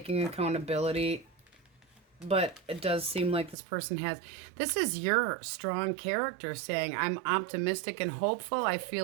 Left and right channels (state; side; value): drops out; left; at 3.6 s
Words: accountability. But it does seem like this person has... This is your strong character saying, I'm optimistic and hopeful. I feel